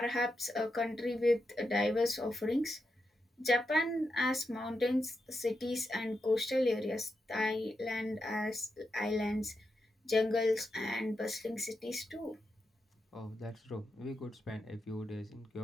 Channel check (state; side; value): normal; both; correlation 0.87